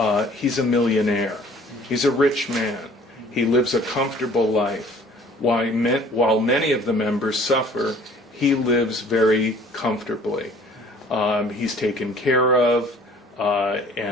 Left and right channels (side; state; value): both; normal; correlation 0.53